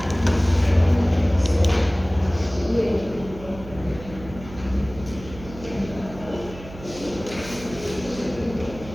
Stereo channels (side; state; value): right; noise; hum, 15 dB below the sound